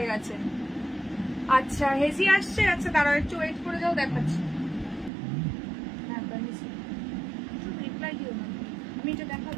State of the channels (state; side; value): drops out; left; at 5.1 s